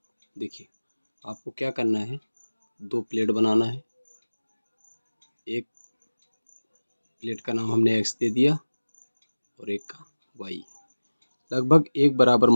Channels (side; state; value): both; inverted; correlation -1.00